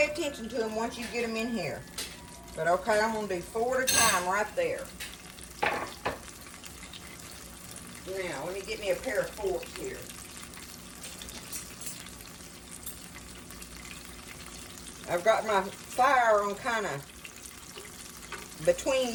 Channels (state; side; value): identical; both; correlation 1.00